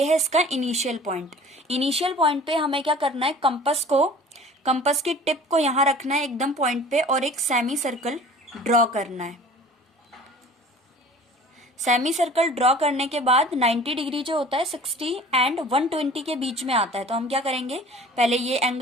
है इसका इनिशियल पॉइंट। इनिशियल पॉइंट पे हमें क्या करना है, कंपस की टिप को यहाँ रखना है एकदम पॉइंट पे और एक सेमी सर्कल ड्रॉ करना है। सेमी सर्कल ड्रॉ करने के बाद 90 डिग्री जो होता है 60 एंड 120 के बीच में आता है। तो हम क्या करेंगे, पहले ये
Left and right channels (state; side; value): normal; both; correlation 0.45